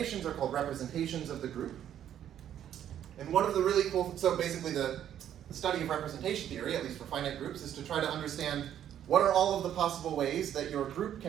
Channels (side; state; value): left; quieter; 10.4 dB